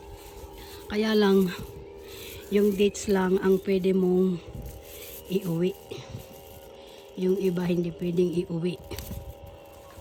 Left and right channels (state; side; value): identical; both; correlation 1.00